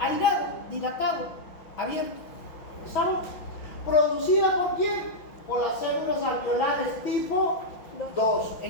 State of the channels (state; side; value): late; right; 6.2 ms